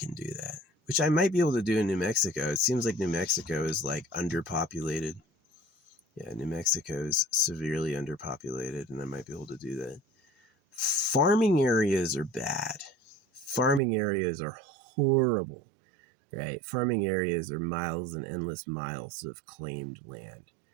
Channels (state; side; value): drops out; left; at 13.8 s